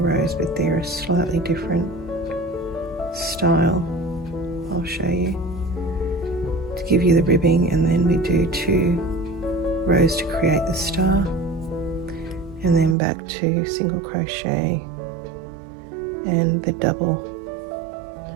but they're a slightly different style. I'll show you to give you the ribbing, and then we do 2 rows to create the star, and then back to single crochet and the double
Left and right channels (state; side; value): drops out; left; at 13.0 s